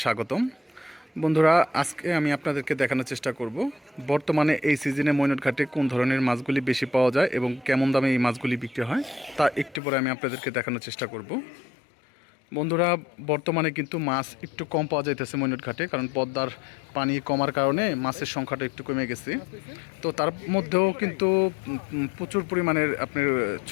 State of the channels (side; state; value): right; drops out; at 9.8 s